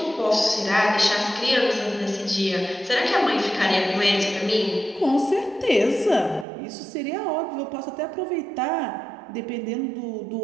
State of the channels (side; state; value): left; drops out; at 6.5 s